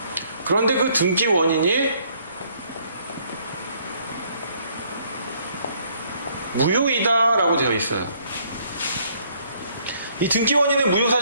그런데 그 등기 원인이 무효이다라고 되어 있어요. 이 등기 원인의 무효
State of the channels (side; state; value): both; inverted; correlation -0.65